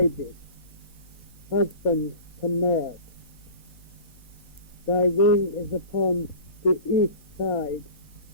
husband to Mert. Thy wing is upon the east side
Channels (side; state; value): right; late; 4.1 ms